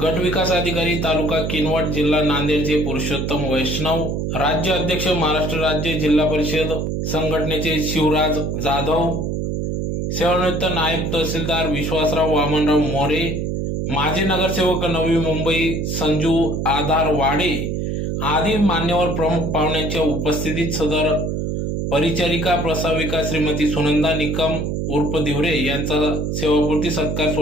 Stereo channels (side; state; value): right; noise; hum, 1 dB below the sound